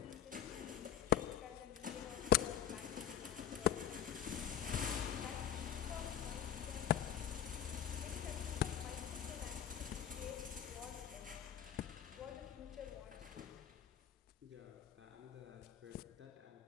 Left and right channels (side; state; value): right; quieter; 10.0 dB